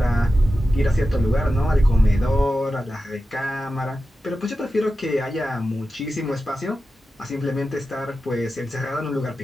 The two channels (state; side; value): normal; both; correlation 0.92